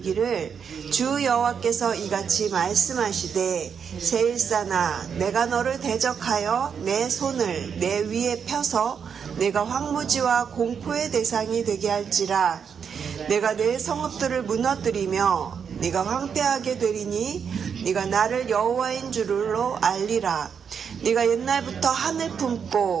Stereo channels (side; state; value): left; quieter; 7.0 dB